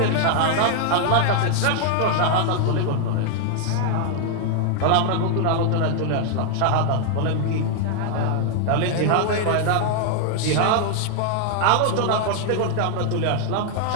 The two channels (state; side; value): different; both; correlation 0.00